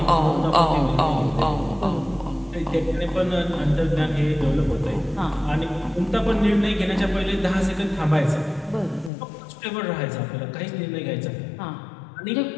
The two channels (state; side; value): drops out; right; at 9.1 s